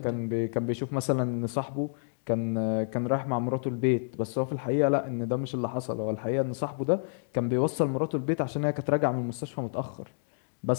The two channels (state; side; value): silent; right; digital silence